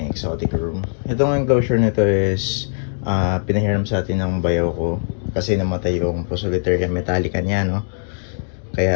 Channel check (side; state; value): right; silent; digital silence